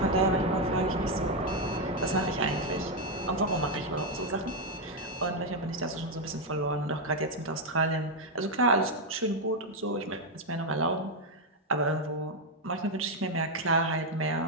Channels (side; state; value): both; normal; correlation 0.02